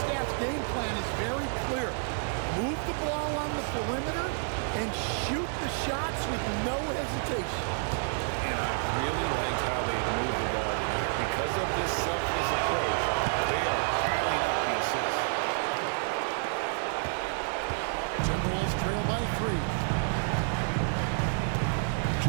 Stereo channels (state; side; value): silent; left; digital silence